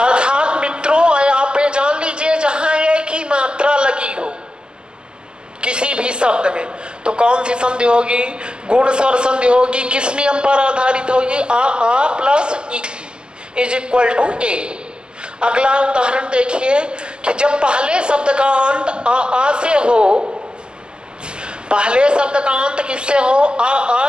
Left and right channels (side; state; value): left; late; 0.048 ms